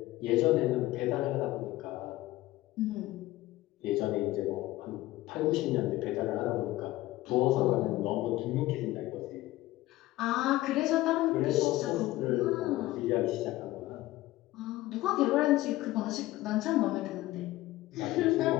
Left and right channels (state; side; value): quieter; right; 17.1 dB